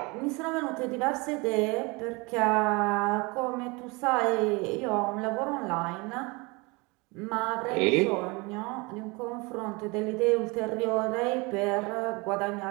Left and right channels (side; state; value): left; quieter; 26.7 dB